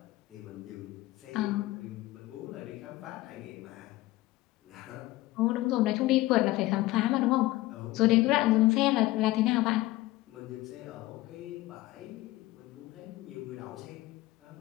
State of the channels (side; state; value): right; quieter; 18.0 dB